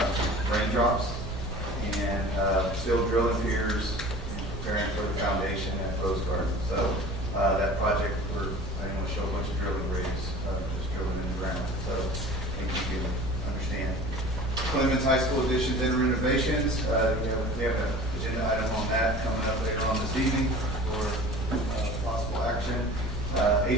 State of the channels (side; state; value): both; normal; correlation 0.41